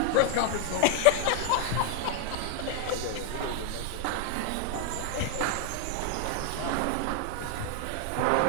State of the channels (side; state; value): both; different; correlation 0.00